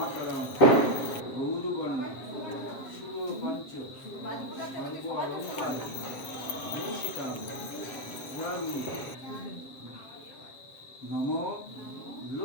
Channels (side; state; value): right; late; 7.5 ms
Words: গৌরবর্ণ সুরপঞ্চ সর্ব অলঙ্কার ভূষিতাং পুরাণী নমো